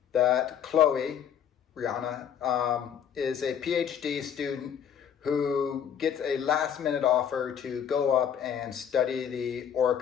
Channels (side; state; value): right; quieter; 8.6 dB